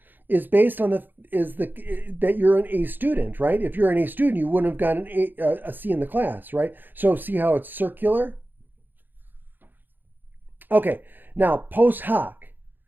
is based on that you're an A student, right? If you're an A student, you wouldn't have gotten a C in the class, right? So see how it's circular? Okay, now post hoc,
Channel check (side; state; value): left; late; 0.091 ms